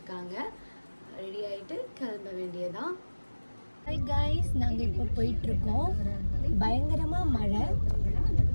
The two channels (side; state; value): both; inverted; correlation -1.00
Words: ரெடி ஆகிட்டு கிளம்ப வேண்டியதான். ஹாய் காய்ஸ், நாங்கள் இப்போ போயிட்டுருக்கோம். பயங்கரமாக மழை.